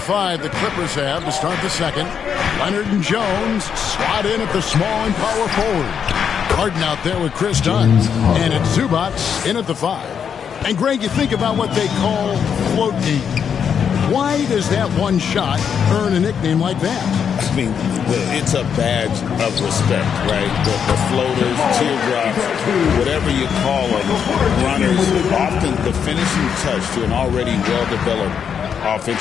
the Clippers have to start the second. Leonard and Jones slot in at the small and power forward. Harden out there with Chris Dunn. And it's Zubats in at the 5. And Greg, you think about what they call float D. Why does that one shot earn a nickname like that? I mean, it's a badge of respect, right? The floaters, teardrops, whatever you call them, runners, often the finishing touch to an already well-developed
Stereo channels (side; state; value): right; quieter; 7.5 dB